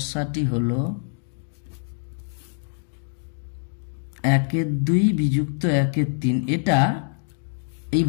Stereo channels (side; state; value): right; silent; digital silence